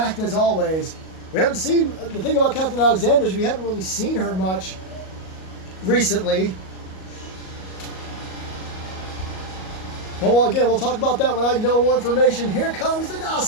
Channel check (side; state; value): right; late; 38 ms